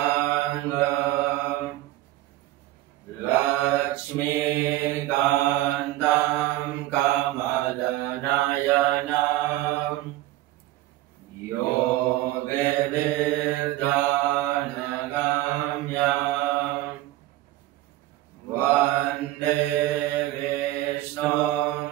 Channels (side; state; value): left; quieter; 16.2 dB